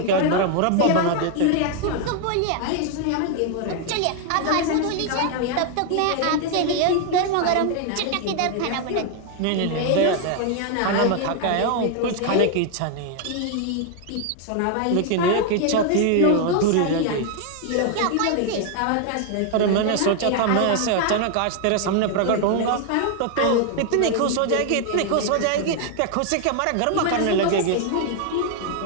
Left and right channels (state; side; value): different; both; correlation 0.00